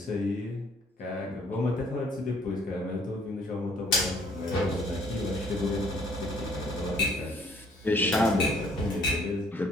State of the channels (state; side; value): normal; both; correlation 0.62